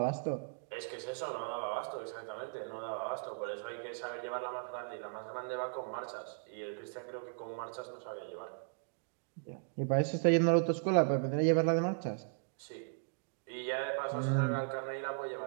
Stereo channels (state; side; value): silent; left; digital silence